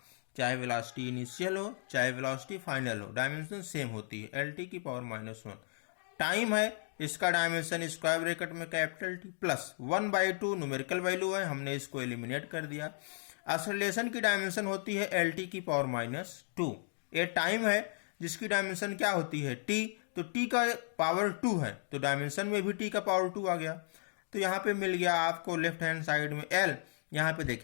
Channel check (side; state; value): right; silent; digital silence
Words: चाहे वेलोसिटी इनिशियल हो चाहे वेलोसिटी फाइनल हो, डायमेंशन सेम होती है, एल टी की पावर -1। टाइम है, इसका डायमेंशन स्क्वायर ब्रैकेट में capital T plus 1/2 numerical value है, हमने इसको एलिमिनेट कर दिया। एक्सेलरेशन की डायमेंशन होती है एल टी की पावर -2। ये टाइम है जिसकी डायमेंशन क्या होती है, टी। तो टी का पावर 2 है तो डायमेंशन में भी टी का पावर 2 आ गया। तो यहाँ पे मिल गया आपको लेफ्ट हैंड साइड में एल। यहाँ पे